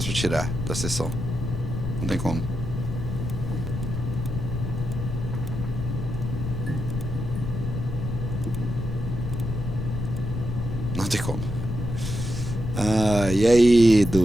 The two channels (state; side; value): noise; left; rumble, 4 dB below the sound